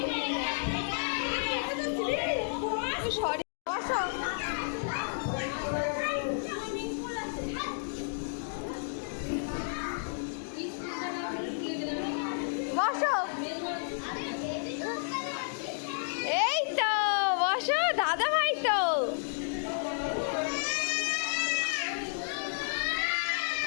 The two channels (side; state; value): right; silent; digital silence